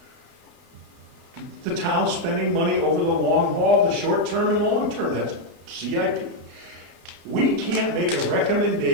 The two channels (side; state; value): left; late; 25 ms